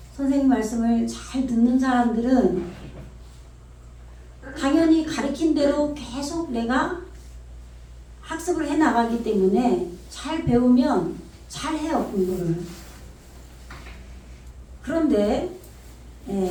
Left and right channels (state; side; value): identical; both; correlation 1.00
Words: 선생님 말씀을 잘 듣는 사람들은 당연히 가르친 대로 계속 내가 학습을 해 나가기 때문에 잘 배우면 잘 해요, 공부를. 그런데